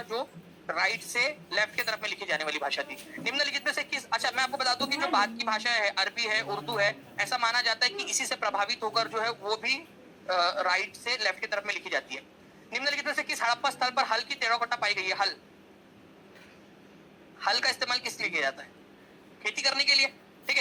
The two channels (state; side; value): identical; both; correlation 1.00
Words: जो राइट से लेफ्ट की तरफ में लिखी जाने वाली भाषा थी। निम्नलिखित में से किस, अच्छा मैं आपको बता दूं कि जो बाद की भाषा है, अरबी है, उर्दू है, ऐसा माना जाता है कि इसी से प्रभावित होकर जो है वो भी राइट से लेफ्ट की तरफ में लिखी जाती है। निम्नलिखित में से किस हड़प्पा स्थल पर हल की टेराकोटा पाई गई है? हल, हल का इस्तेमाल किस लिए किया जाता है? खेती करने के लिए, ठीक